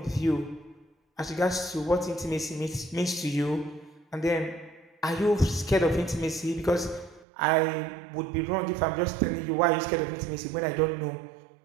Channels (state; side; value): drops out; left; at 7.2 s